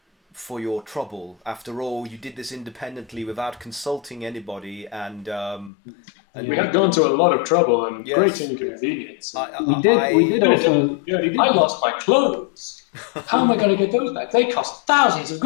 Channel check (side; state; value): right; drops out; at 5.7 s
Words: for your trouble. After all, you did this independently without consulting anybody, and we have gone to a lot of trouble and great inconvenience. We did also. I lost my clothes. How am I going to get those back? They cost thousands of